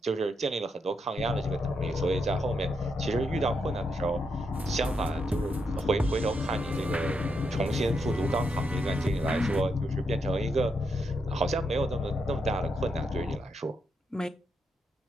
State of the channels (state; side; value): normal; both; correlation 0.81